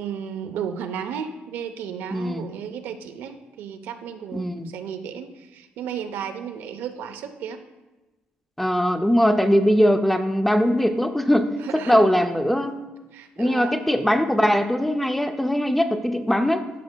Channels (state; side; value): normal; both; correlation 0.92